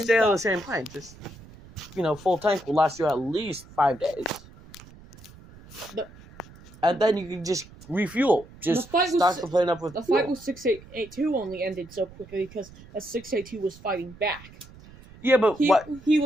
on the same plane. Just full tank will last you at least 5 days. And then you can just refuel. Just stock the plane up with the fuel. fight with 682 only ended so quickly because 682 was fighting back. Yeah, but he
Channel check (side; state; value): right; noise; rumble, 21 dB below the sound